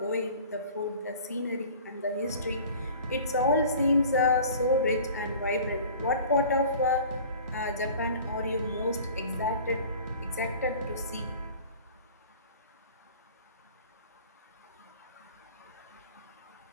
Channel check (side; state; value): both; inverted; correlation -0.44